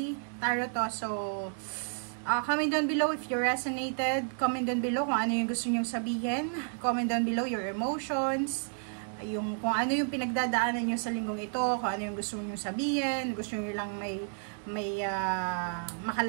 tarot to. So, comment down below if you resonated. Comment down below kung ano yung gusto nyong sabihin. Comment down below your emotions. Kung ano yung pinagdadaanan nyo sa linggong ito. Kung ano yung gusto nyong sabihin. Gusto nyo lang may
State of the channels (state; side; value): silent; left; 56 dB below the other